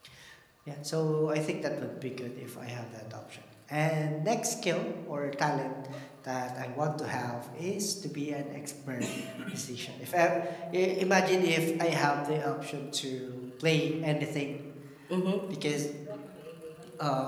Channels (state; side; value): identical; both; correlation 1.00